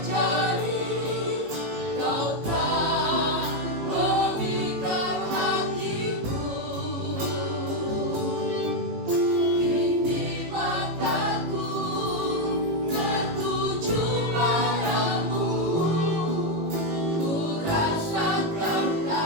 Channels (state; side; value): late; left; 18 ms